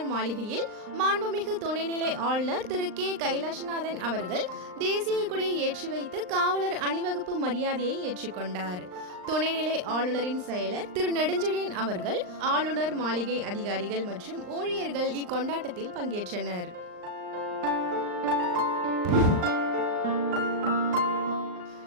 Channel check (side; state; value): left; late; 39 ms